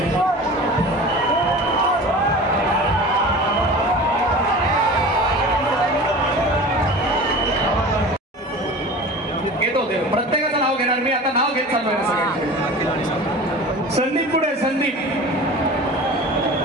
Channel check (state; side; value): normal; both; correlation 0.36